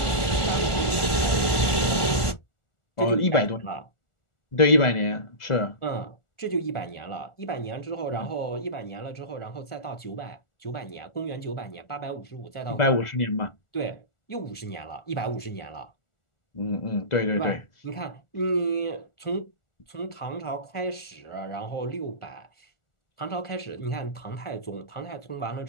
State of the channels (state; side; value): late; right; 1.4 ms